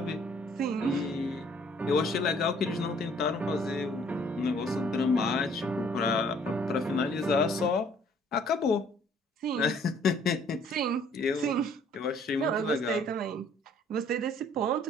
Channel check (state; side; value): normal; both; correlation 0.59